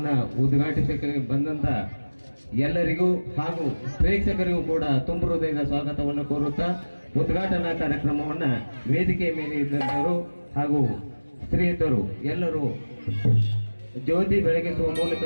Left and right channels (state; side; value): inverted; both; correlation -1.00